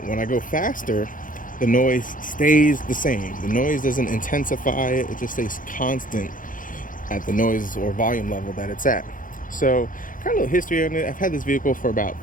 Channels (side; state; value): right; late; 0.39 ms